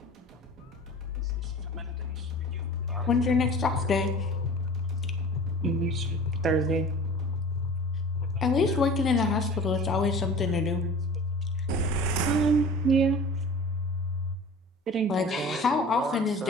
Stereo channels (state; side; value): normal; both; correlation 0.41